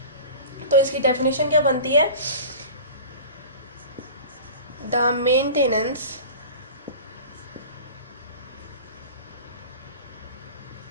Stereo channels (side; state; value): both; inverted; correlation -0.37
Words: तो इसकी डेफिनेशन क्या बनती है? The maintenance